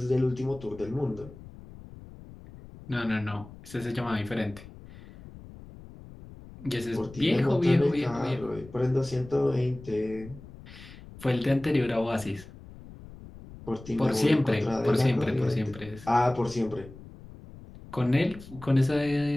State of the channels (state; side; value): noise; left; rumble, 17 dB below the sound